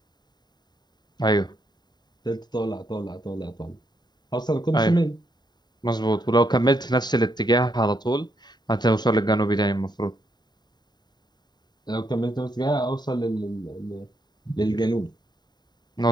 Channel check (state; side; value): late; right; 0.20 ms